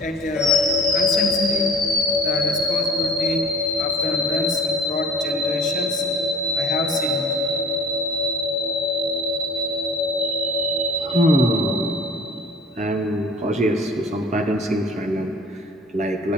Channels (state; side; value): normal; both; correlation 0.45